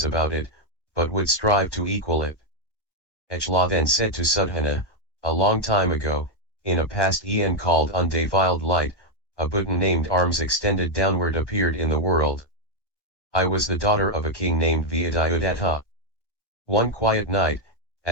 about it, but would strive to equal it. Ichla then said to Sudhana, a long time ago, in a past eon called undefiled light, a Buddha named arms extended downward appeared in the world. I was the daughter of a king named Vyadayudatta. One quiet night,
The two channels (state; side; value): late; right; 1.1 ms